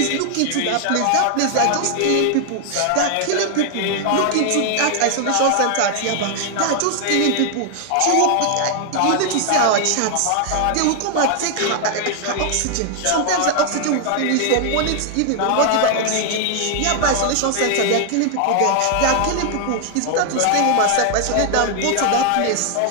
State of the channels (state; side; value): different; both; correlation 0.00